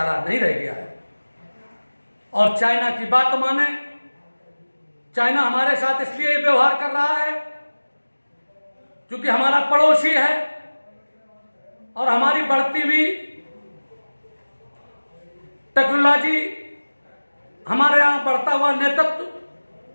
नहीं रह गया है। और चाइना की बात माने, चाइना हमारे साथ इसलिए व्यवहार कर रहा है क्योंकि हमारा पड़ोसी है और हमारी बढ़ती हुई टेक्नोलॉजी, हमारे यहां बढ़ता हुआ नेतृत्व,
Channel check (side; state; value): both; inverted; correlation -1.00